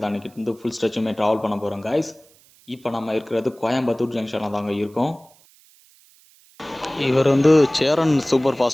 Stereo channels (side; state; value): right; noise; hiss, 29 dB below the sound